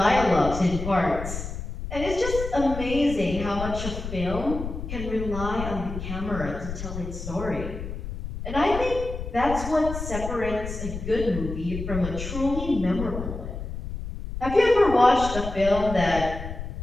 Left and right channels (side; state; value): left; noise; rumble, 7 dB below the sound